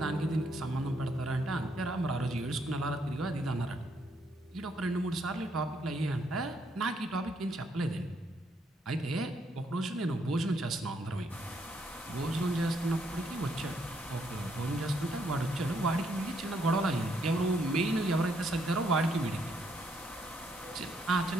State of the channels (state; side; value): normal; both; correlation 0.73